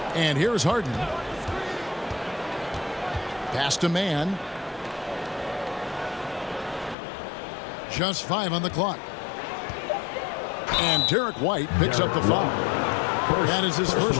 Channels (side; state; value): right; drops out; at 7.0 s